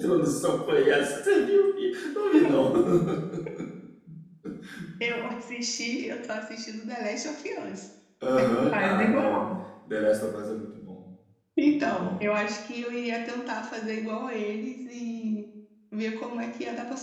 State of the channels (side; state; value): both; identical; correlation 1.00